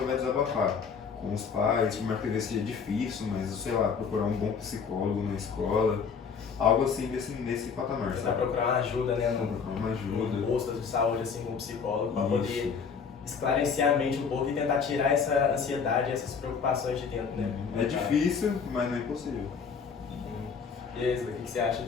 vai desabafar. Com os pais, por mais que às vezes seja difícil, mas sei lá, procurar um bom psicólogo na escola. Algo assim nesse patamar, Tentar sabe? procurar uma ajuda, né? Procurar uma ajuda. Num posto de saúde, assim, com um psicólogo, para Isso. poder esclarecer a mente um pouco e tentar tirar essa ansiedade, essas preocupações de dentro, né? É difícil, mas não é impossível. E aí, Isla, o que você acha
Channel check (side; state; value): right; quieter; 6.0 dB